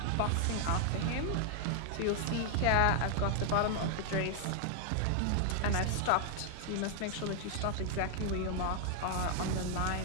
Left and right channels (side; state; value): both; different; correlation 0.00